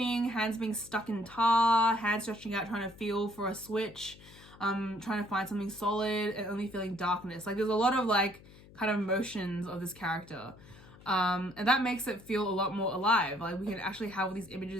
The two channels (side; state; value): left; noise; hum, 21 dB below the sound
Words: hands being stuck in tar, hands stretching out, trying to feel for a switch, trying to find something solid, and only feeling darkness. Like there's a lot of like kind of motions of this character. And that makes it feel a lot more alive. Like we can actually have all these